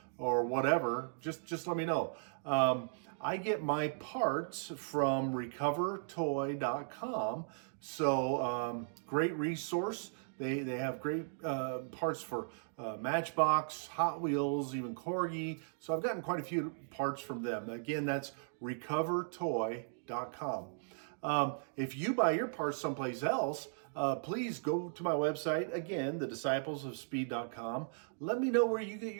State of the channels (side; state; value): left; silent; digital silence